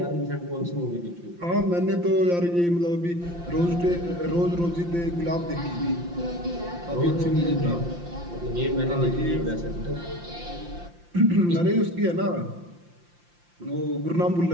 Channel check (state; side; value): late; left; 5.8 ms